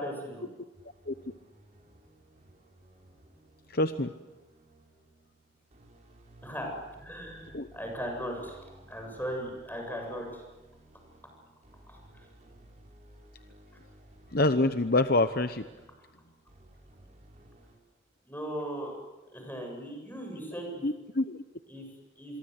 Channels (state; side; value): normal; both; correlation 0.20